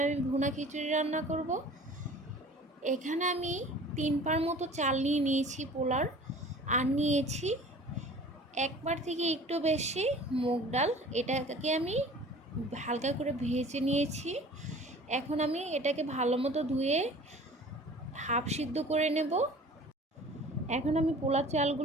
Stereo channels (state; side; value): normal; both; correlation 0.45